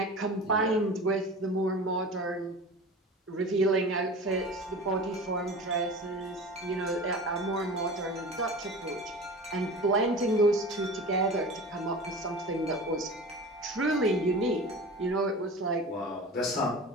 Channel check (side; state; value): both; normal; correlation 0.35